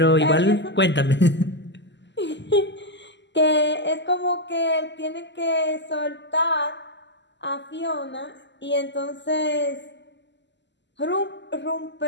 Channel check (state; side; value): late; right; 0.52 ms